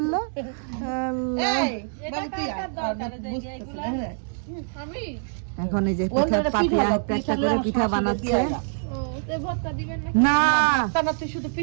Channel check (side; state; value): left; silent; digital silence